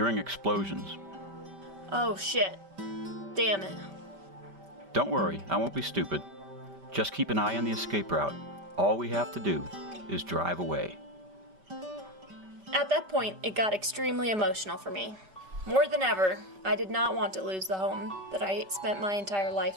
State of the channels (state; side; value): late; left; 5.1 ms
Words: explosions. "Oh shit. Damn it." Don't worry, I won't be stupid. Just keep an eye on the escape route. All we have to do is drive away. At that point, it got extremely emotional for me. More than ever, I did not want to lose the home that I spent my entire